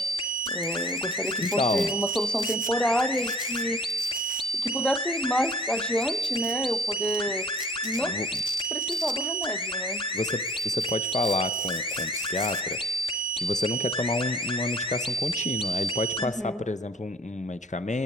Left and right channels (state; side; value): normal; both; correlation 0.51